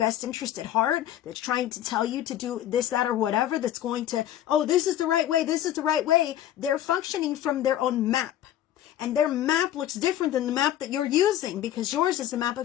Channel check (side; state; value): right; quieter; 12.1 dB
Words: interest at heart, that's trying to tell you to do this, that, or whatever, that's going to, oh, this is the right way, this is the right way. They're functioning from their own map. And their map looks different than the map that you're using, because yours is the map